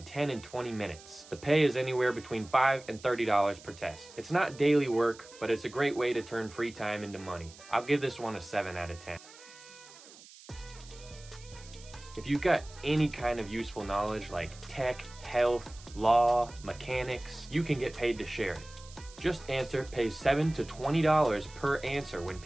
10 and 20 minutes. The pay is anywhere between $5 and $30 per test. It's not daily work, but it's a great way to turn free time into money. I'll give this one a 7 out of 10. If you've got any kind of useful knowledge like tech, health, law, mechanics, you can get paid to share it. JustAnswer pays $7 to $20 per answer when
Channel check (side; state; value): right; noise; hiss, 20 dB below the sound